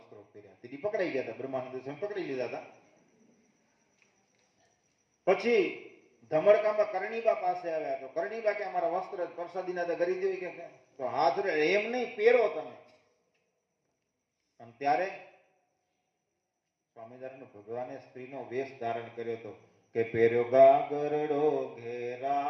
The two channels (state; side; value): identical; both; correlation 1.00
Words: પહેર્યા, તેથી પકડાઈ ગયા હતા. બ્રહ્માનંદ સ્વામી પકડી લીધા હતા. પછી ધમડકામાં કરણીબા પાસે આવ્યા તો કરણીબા કે અમારા વસ્ત્ર પ્રસાદીના તો કરી દેવી કે તો હાથ એમ નહીં પહેરો તમે. અને ત્યારે સ્વામિનારાયણ ભગવાને સ્ત્રીનો વેશ ધારણ કર્યો હતો કે પહેર્યો ગાગરડો